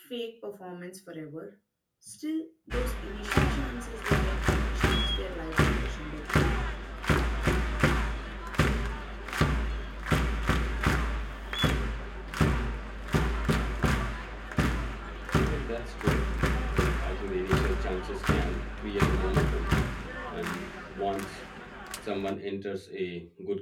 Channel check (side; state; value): both; identical; correlation 1.00